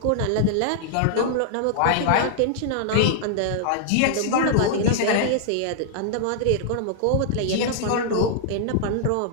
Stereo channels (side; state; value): both; different; correlation -0.01